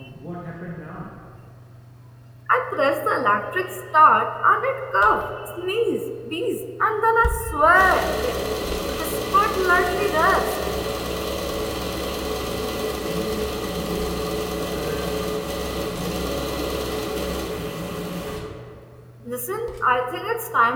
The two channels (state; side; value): identical; both; correlation 1.00